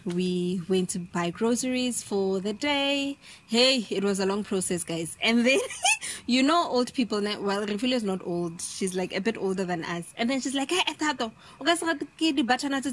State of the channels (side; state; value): both; identical; correlation 1.00